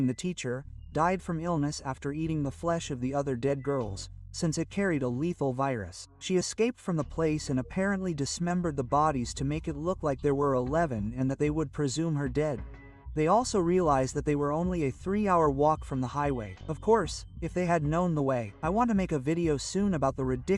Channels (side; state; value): both; identical; correlation 1.00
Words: the teacher, died from illness after eating the flesh of the other dead girls, since it carried a lethal virus. She escaped from the place and apparently dismembered the bodies to make it look like there were 11 and that they would presume her dead. They also realized that they were only a 3-hour walk from the highway. Of course, if they had known the way. I want to make a video soon about the